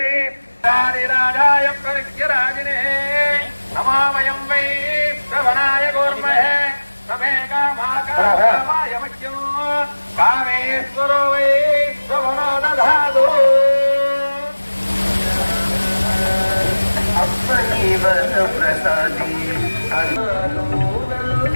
రాజాయ ప్రవిద్యరాజినే నమామయం వై శ్రవణాయ గోర్మహే సమే కామాయ మఖ్యం కామేశ్వరో వై శ్రవణో దధాదు ప్రసాది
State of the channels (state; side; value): inverted; both; correlation -1.00